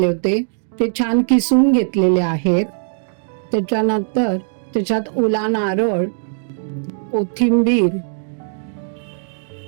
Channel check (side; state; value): left; silent; digital silence